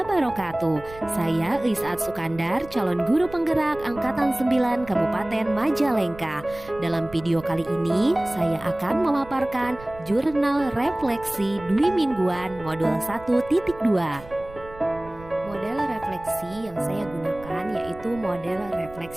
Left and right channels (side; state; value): right; noise; rumble, 18 dB below the sound